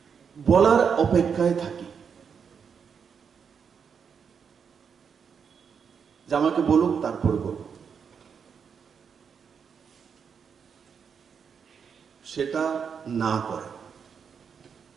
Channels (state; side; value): quieter; left; 6.7 dB